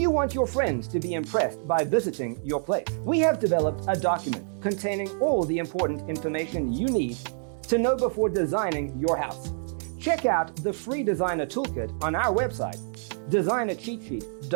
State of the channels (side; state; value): left; silent; digital silence